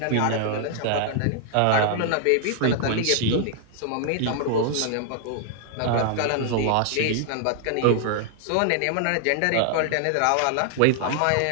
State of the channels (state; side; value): different; both; correlation 0.00